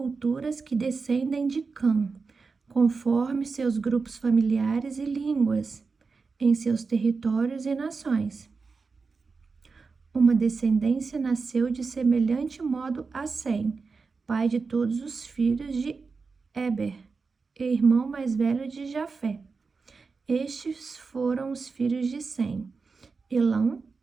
que descendem de Cã, conforme seus grupos familiares e línguas, em seus territórios e nações. Uma descendência nasceu de semelhante modo a Sem, pai de todos os filhos de Eber, e irmão mais velho de Jafé. Estes foram os filhos de Sem: Elão,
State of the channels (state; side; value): quieter; left; 4.6 dB